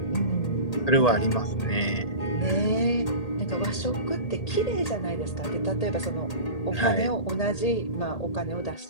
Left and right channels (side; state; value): right; late; 1.8 ms